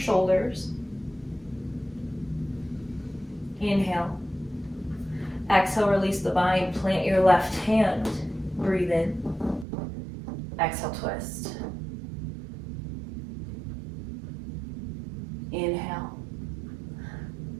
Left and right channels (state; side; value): drops out; left; at 9.7 s